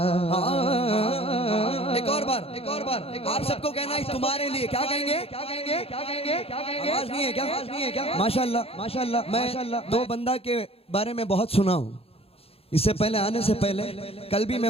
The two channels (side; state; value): right; late; 0.28 ms